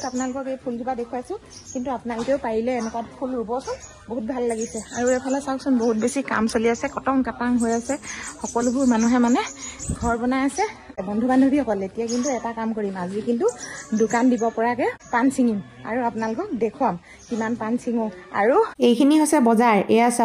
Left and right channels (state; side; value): identical; both; correlation 1.00